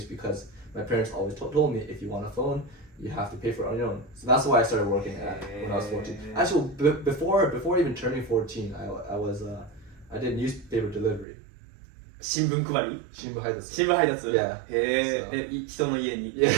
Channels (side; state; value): left; drops out; at 11.2 s